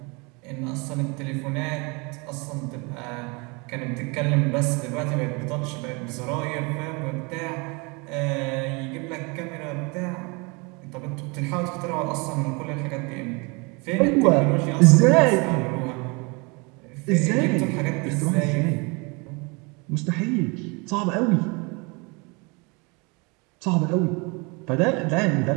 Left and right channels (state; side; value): quieter; left; 29.2 dB